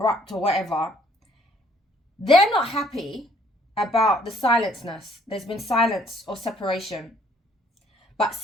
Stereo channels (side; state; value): both; normal; correlation 0.63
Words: or whatever, they're not happy about the silenceness. There's been silence or separation. But